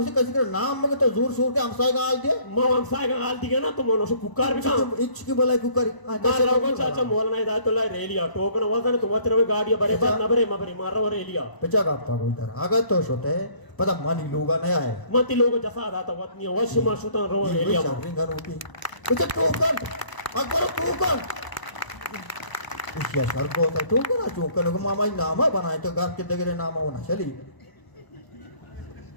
कसी कर नाम मगे तो जोर शोर के हमसाय का हाल दिया मां हमसाय का हाल दिया ना तो मोनो से कुकार भी काम इच की बोला कुकर मारा को चाचा मोला नहीं दा तो ला रेलिया टोकन वजन तो वतर गाड़ी बरे पर न बरे मबरे मार रहा रेलिया पिचा का को इधर आगत तो छोटे पता मानी लोगा नहीं आए मती लोग जसा दा तो वतनी वश मा सुतन रो रेलिया घर उठी पिचा टोकन अकबर टोकन इसिया सर को तो टोकन टोकन को मामा नामा बनाए तो घर के दगरे नामा होना चली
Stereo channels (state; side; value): late; right; 1.0 ms